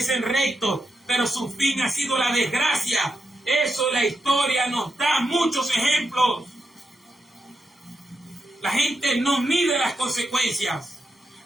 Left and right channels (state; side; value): normal; both; correlation 0.85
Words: rectos, pero su fin ha sido la desgracia. Eso la historia nos da muchos ejemplos. La gente no mide las consecuencias.